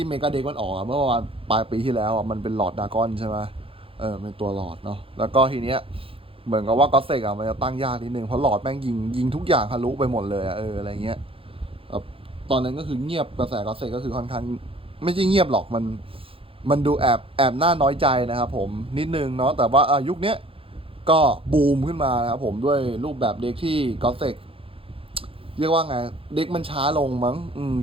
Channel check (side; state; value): left; late; 0.27 ms